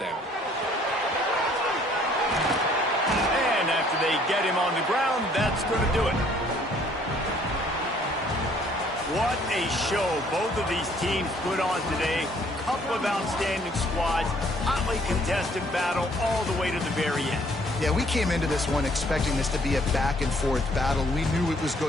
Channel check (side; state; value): both; normal; correlation 0.61